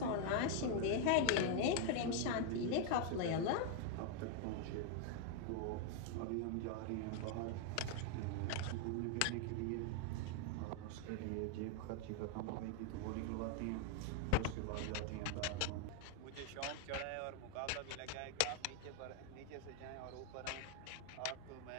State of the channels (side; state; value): both; different; correlation 0.00